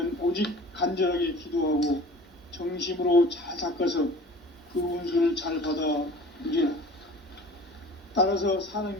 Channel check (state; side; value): normal; both; correlation 0.44